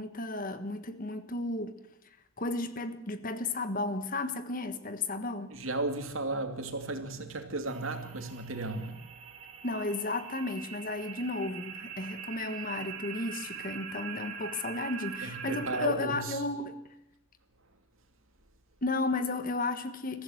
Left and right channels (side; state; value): both; normal; correlation 0.08